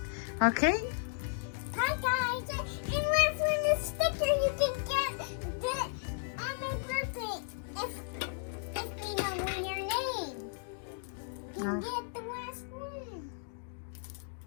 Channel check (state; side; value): silent; right; digital silence